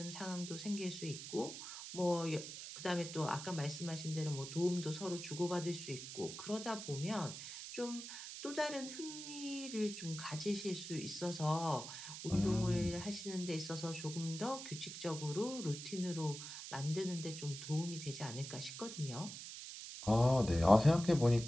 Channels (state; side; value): noise; right; hiss, 9 dB below the sound